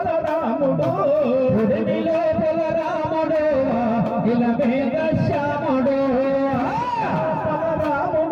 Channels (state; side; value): identical; both; correlation 1.00